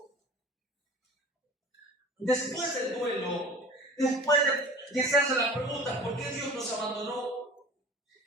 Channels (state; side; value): normal; both; correlation 0.41